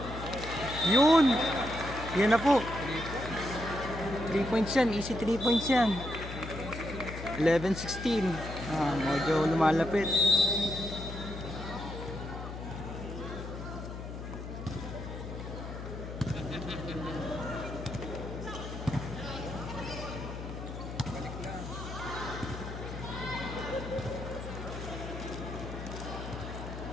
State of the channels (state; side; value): noise; left; hum, 8 dB below the sound